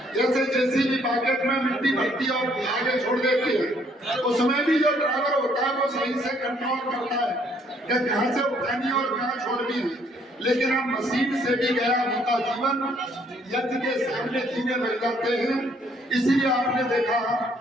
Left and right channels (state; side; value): normal; both; correlation 0.66